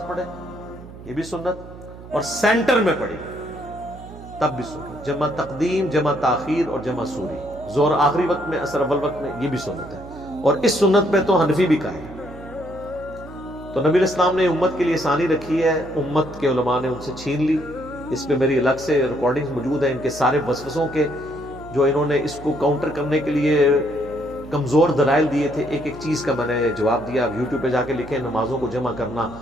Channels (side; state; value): right; noise; hum, 16 dB below the sound